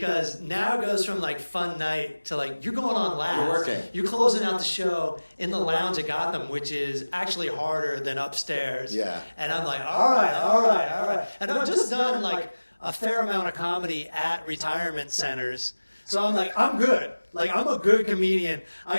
now it goes from like fun night to like you're going on last. You're working. You're closing out the show in the lounge at Gotham, which is actually harder than upstairs. Yeah. And I'm like, all right. And I've just done like a fair amount of comedy at retirement centers. So I'm like, I'm good. Like, I'm a good comedian. I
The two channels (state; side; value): inverted; both; correlation -1.00